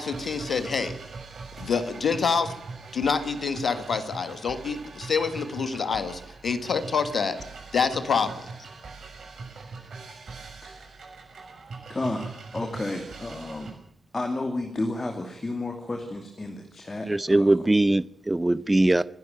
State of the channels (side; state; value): both; normal; correlation 0.88